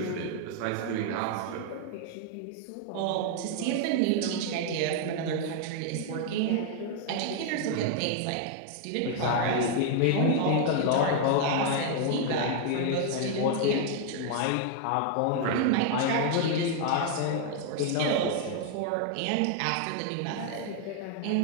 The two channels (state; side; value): different; both; correlation 0.00